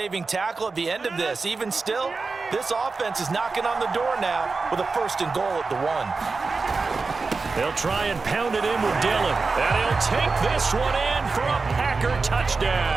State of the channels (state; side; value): quieter; left; 4.2 dB